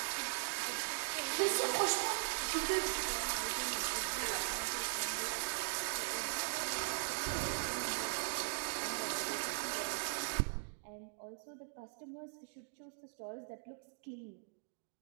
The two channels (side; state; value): left; silent; digital silence